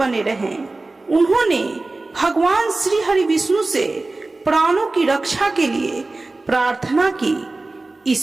रहे। उन्होंने भगवान श्री हरि विष्णु से प्राणों की रक्षा के लिए प्रार्थना की।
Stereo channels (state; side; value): quieter; left; 3.2 dB